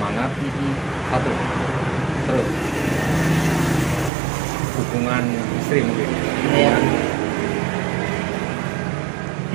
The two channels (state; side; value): drops out; left; at 4.1 s